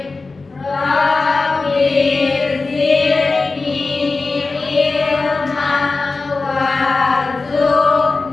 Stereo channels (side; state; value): right; quieter; 3.9 dB